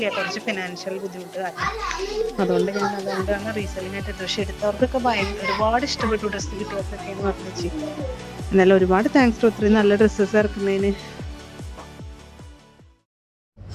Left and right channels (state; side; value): identical; both; correlation 1.00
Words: കുറച്ച് ഫിനാൻഷ്യൽ ബുദ്ധിമുട്ട് കാരണം. അതുകൊണ്ടാണ് റീസെല്ലിംഗ് ആയിട്ട് ഡ്രസ്സ് എടുത്തവർക്കൊക്കെ ഒരുപാട് ഇഷ്ടപ്പെട്ടു. ഡ്രസ്സ് കിട്ടിയവർക്കൊക്കെ എന്ന് പറഞ്ഞു. എന്നാലും ഒരുപാട് താങ്ക്സ് ഒത്തിരി നല്ല ഡ്രസ്സസ് ഇറക്കുന്നതിന്.